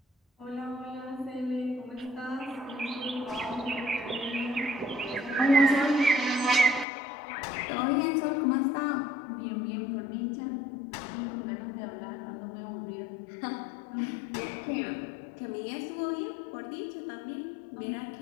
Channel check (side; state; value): right; drops out; at 6.9 s